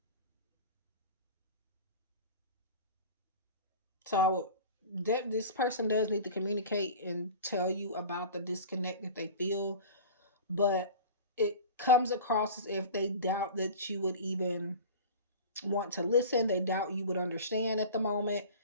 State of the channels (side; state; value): both; inverted; correlation -0.36